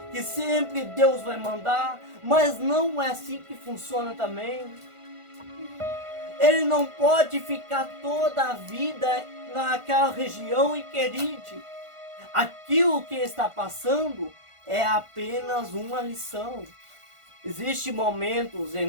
que sempre Deus vai mandar, mas não é assim que funciona também. Ele não pode ficar toda a vida naquela região em Queride. Aquilo que está passando é apenas uma lição. Existem momentos em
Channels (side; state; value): left; late; 1.5 ms